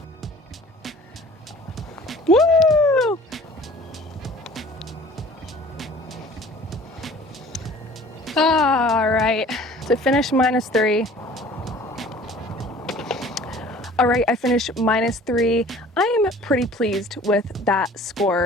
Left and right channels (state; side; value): normal; both; correlation 0.48